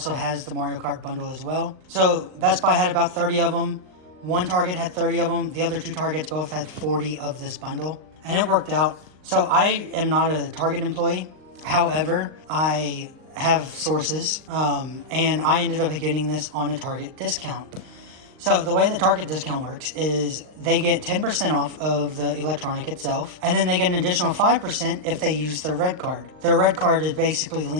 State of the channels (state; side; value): late; left; 39 ms